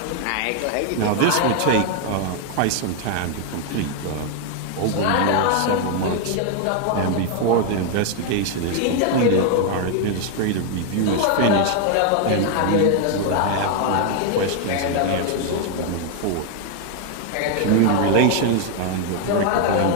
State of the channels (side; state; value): both; different; correlation 0.01